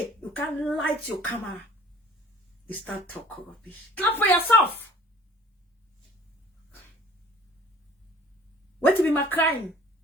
You can't light your camera. You start talking rubbish. Clap for yourself. What to be my crime?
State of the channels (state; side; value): normal; both; correlation 0.50